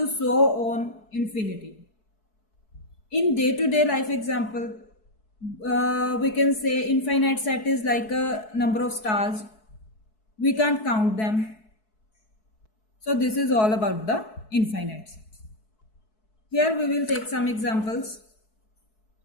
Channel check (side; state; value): right; late; 4.6 ms